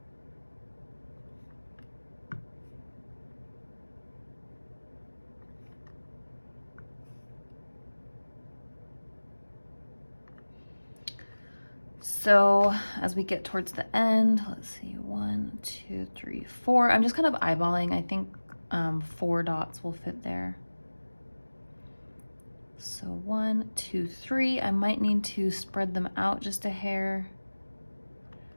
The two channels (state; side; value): inverted; both; correlation -1.00